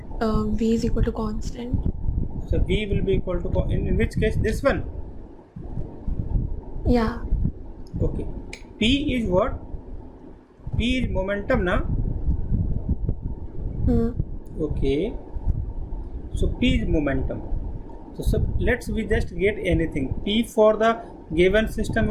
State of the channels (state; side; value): identical; both; correlation 1.00